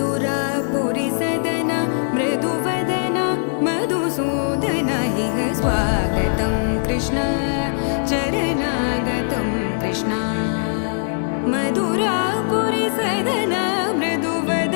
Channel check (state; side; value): silent; right; digital silence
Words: सदना मृदुवदना मधुसूदन इह स्वागतं कृष्ण चरणागतं कृष्ण मधुरापुरी सदना